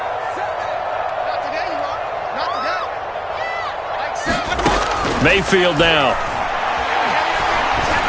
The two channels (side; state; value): both; identical; correlation 1.00